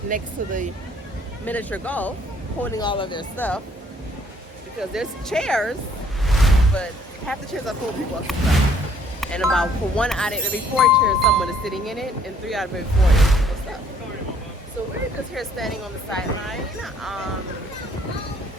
next to the miniature golf, holding all of their stuff because there's chairs, but half the chairs are full of people's stuff. And about for 1 out of every 4 chairs, someone is sitting in it, and 3 out of every 4 is people's stuff. So we're just here standing on the sideline,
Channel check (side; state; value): both; normal; correlation 0.62